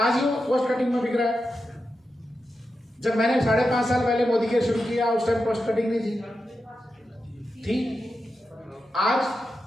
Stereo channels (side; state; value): both; normal; correlation 0.89